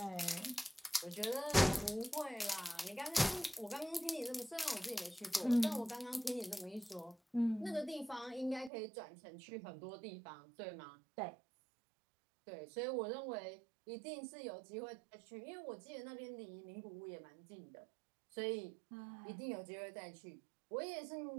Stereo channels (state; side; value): drops out; left; at 8.7 s